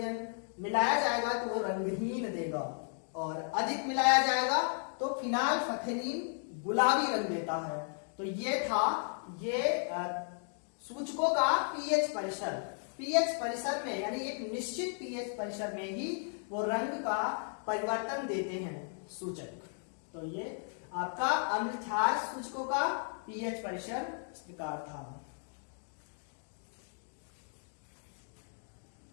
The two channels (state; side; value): silent; right; 54 dB below the other